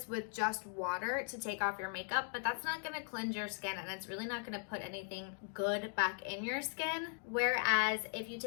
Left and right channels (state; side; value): silent; right; 52 dB below the other